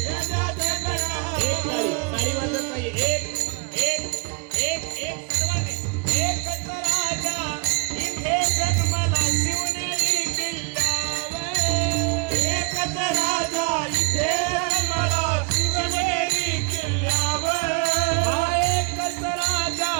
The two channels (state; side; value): quieter; left; 32.4 dB